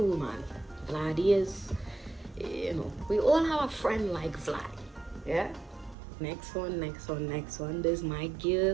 man. Vlad is, you know, we all have a friend like Vlad. Yeah. Next one. This is my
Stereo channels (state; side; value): drops out; left; at 6.0 s